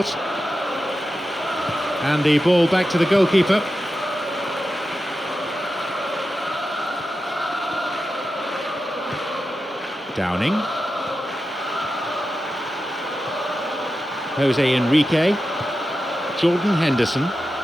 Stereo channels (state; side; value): normal; both; correlation 0.91